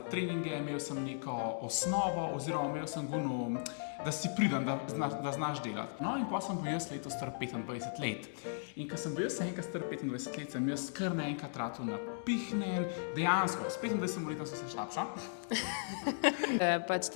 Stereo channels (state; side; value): silent; right; digital silence